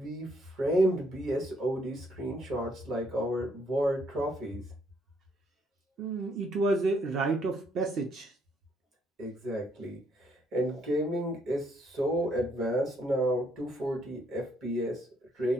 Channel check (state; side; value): normal; both; correlation 0.70